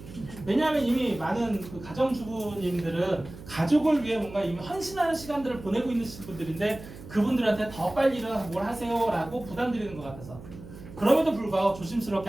왜냐하면 이미 많은 그 가정주부님들은 가족을 위해 뭔가 이미 헌신하는 시간들을 보내고 있는 분들인데 그분들한테 더 빨리 일어나서 뭘 하세요라고 부담드리는 것 같아서. 그럼에도 불구하고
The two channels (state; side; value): noise; right; hum, 15 dB below the sound